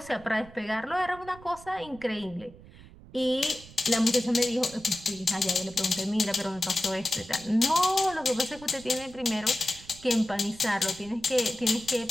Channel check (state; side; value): noise; right; rumble, 20 dB below the sound